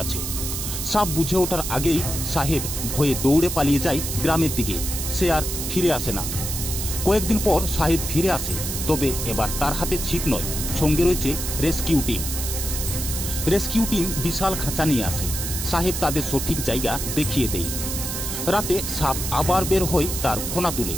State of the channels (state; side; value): noise; right; hiss, 4 dB below the sound